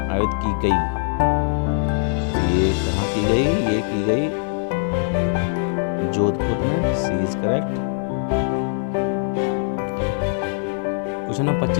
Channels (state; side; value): silent; right; 60 dB below the other